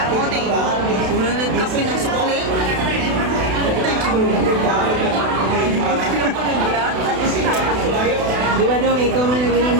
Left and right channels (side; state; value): left; late; 32 ms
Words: Unanad ka pinasukli. Di ba dong, ikaw man naging ang